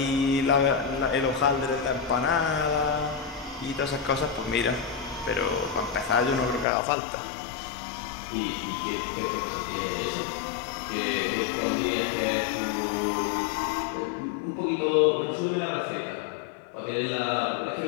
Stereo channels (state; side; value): drops out; right; at 6.7 s